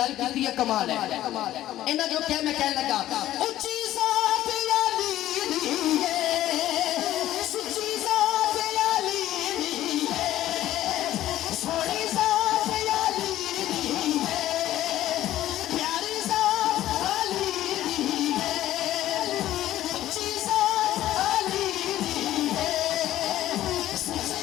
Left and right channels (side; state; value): right; quieter; 13.8 dB